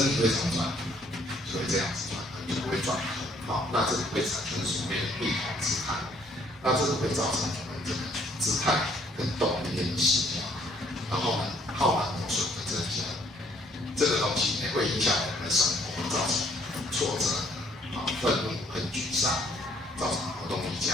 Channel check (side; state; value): both; normal; correlation 0.64